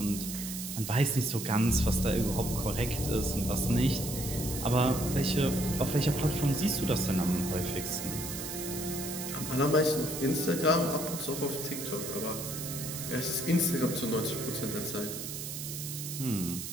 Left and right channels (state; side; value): noise; right; hiss, 7 dB below the sound